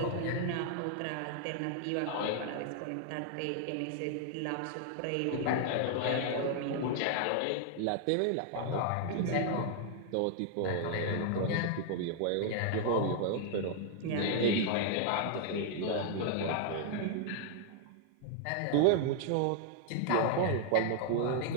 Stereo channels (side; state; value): both; different; correlation 0.00